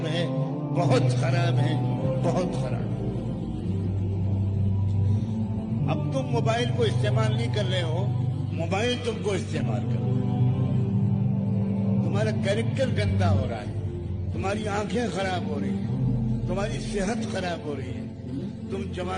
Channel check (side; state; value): both; identical; correlation 1.00